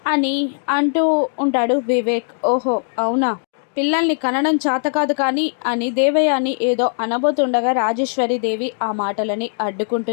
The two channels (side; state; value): right; silent; digital silence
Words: అని అంటూ ఉంటాడు వివేక్. ఓహో అవునా, పిల్లల్ని కనడం చేత కాదు కానీ అని దేవయాని ఏదో అనబోతుండగా రాజేశ్వరి దేవి ఆ మాటలని